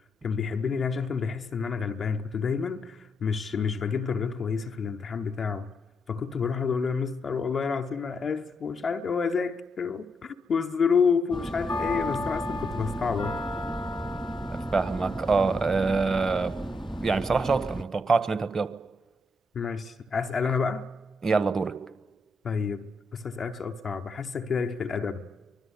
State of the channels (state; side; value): normal; both; correlation 0.80